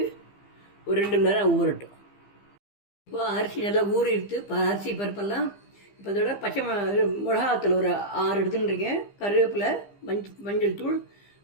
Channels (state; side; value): late; right; 15 ms